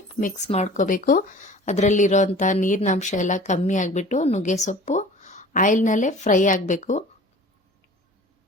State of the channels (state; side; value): normal; both; correlation 0.44